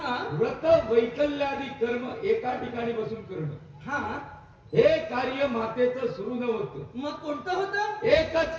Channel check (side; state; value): both; identical; correlation 1.00